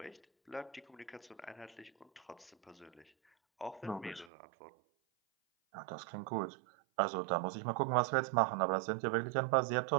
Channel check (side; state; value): left; drops out; at 4.3 s